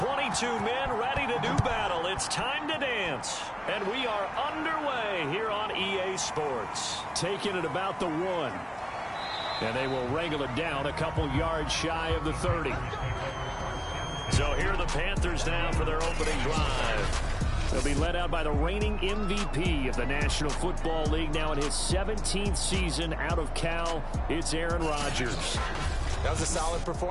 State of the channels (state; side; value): identical; both; correlation 1.00